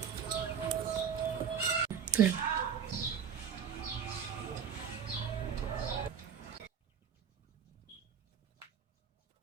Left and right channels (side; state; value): left; quieter; 7.7 dB